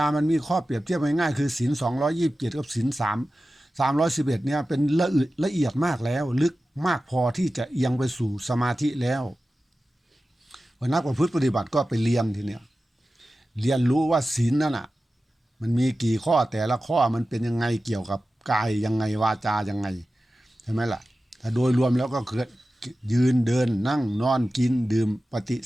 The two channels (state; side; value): normal; both; correlation 0.94